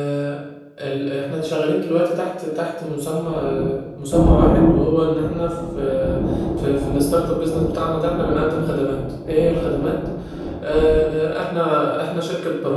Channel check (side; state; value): both; identical; correlation 1.00